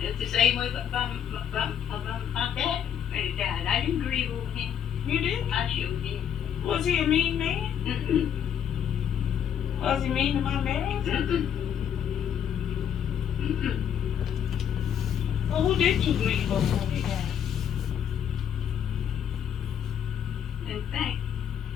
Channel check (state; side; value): quieter; right; 8.8 dB